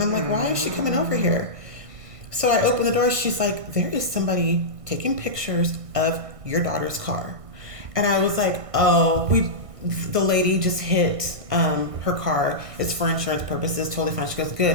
I'm like, why is she coming over here? So I open the door. She's like, there is somebody taking pictures of your daughter's car. And I was like, the lady just hit her car. It's for insurance purposes. Totally fine. She goes,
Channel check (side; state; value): left; late; 1.6 ms